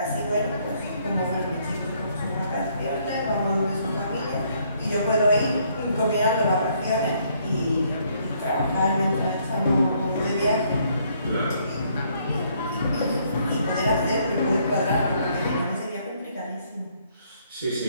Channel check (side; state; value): both; inverted; correlation -0.68